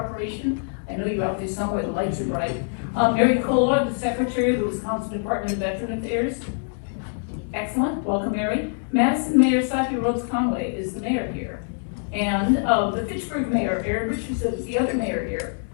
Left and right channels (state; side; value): silent; right; 59 dB below the other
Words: I know you're out there somewhere, the lights are bright. Mary Kohler, the Secretary of the Wisconsin Department of Veteran Affairs. Excellent, welcome Mary. Madison Mayor Safi Rhodes Conway is the mayor here. And the Fitchburg Mayor, Aaron Richardson, is the other mayor here.